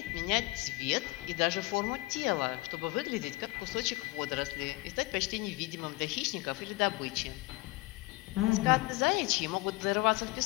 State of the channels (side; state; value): right; quieter; 22.1 dB